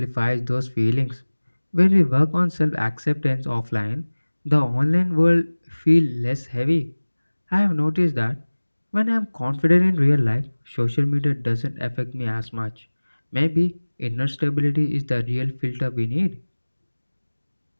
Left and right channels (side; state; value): both; inverted; correlation -1.00